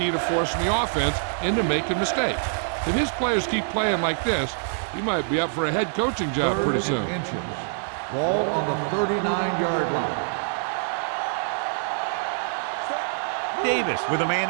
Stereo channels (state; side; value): silent; left; digital silence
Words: to forcing the offense into making mistakes. If his players keep playing like this, he might be up for a head coaching job pretty soon. Inches. Ball on the 39-yard line. Davis with a man